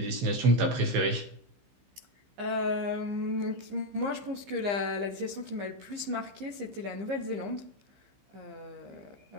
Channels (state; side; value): late; left; 15 ms